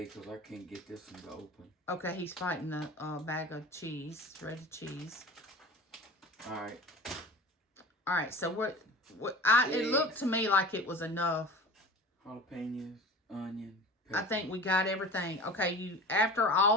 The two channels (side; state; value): both; normal; correlation 0.37